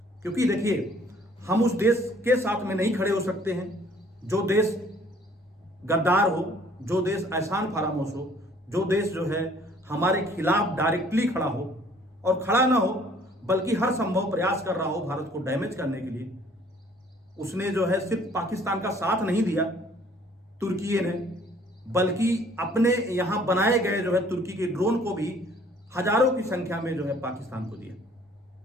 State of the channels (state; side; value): normal; both; correlation 0.57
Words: क्योंकि देखिए, हम उस देश के साथ में नहीं खड़े हो सकते हैं जो देश गद्दार हो, जो देश एहसान फरामोश हो, जो देश जो है हमारे खिलाफ डायरेक्टली खड़ा हो और खड़ा ना हो बल्कि हर संभव प्रयास कर रहा हो भारत को डैमेज करने के लिए। उसने जो है सिर्फ पाकिस्तान का साथ नहीं दिया तुर्की ने, बल्कि अपने यहां बनाए गए जो है तुर्की के ड्रोन को भी हजारों की संख्या में जो है पाकिस्तान को दिया।